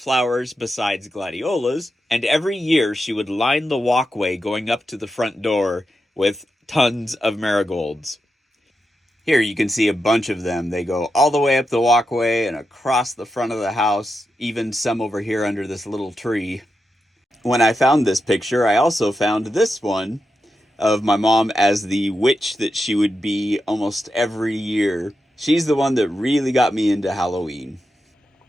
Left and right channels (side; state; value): both; normal; correlation 0.87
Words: besides gladiolas, and every year she would line the walkway going up to the front door with tons of marigolds. Here you can see a bunch of them. They go all the way up the walkway and across the front of the house, even some over here under this little tree. When I found this picture, I also found this one of my mom as the witch that she would be almost every year. She's the one that really got me into Halloween.